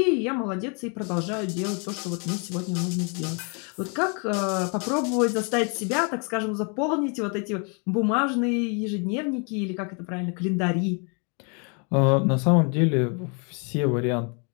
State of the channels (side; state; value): right; quieter; 36.9 dB